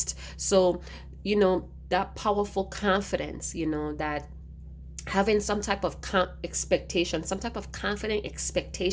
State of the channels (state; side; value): identical; both; correlation 1.00